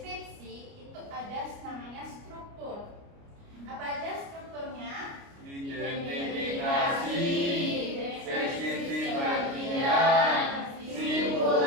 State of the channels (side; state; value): left; late; 29 ms